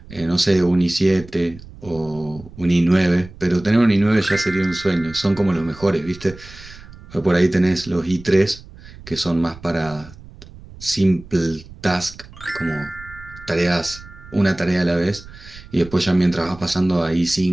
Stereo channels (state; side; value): noise; right; rumble, 19 dB below the sound